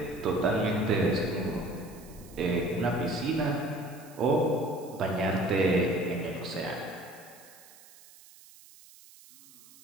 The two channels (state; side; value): noise; right; hiss, 22 dB below the sound